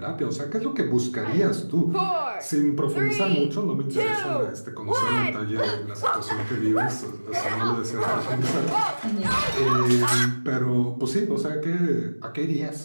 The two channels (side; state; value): both; inverted; correlation -1.00